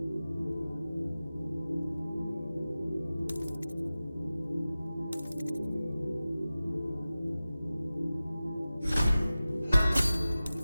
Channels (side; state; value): both; inverted; correlation -0.95